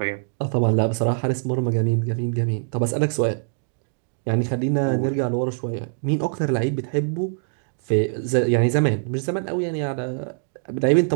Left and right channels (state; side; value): silent; left; digital silence